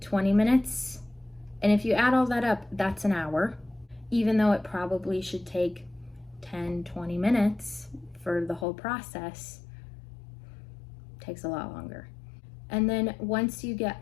20 minutes. And if you add all that up, that's an hour, even though it probably should take 10, 20 minutes for the whole process. It takes a lot longer. And then once you get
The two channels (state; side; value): drops out; right; at 8.7 s